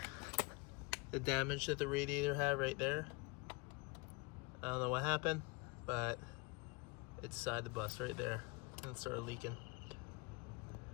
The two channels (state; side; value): quieter; right; 26.3 dB